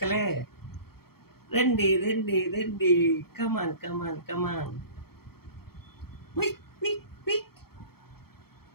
రండి రండి రండి కమాన్ కమాన్ కమాన్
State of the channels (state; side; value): late; right; 0.95 ms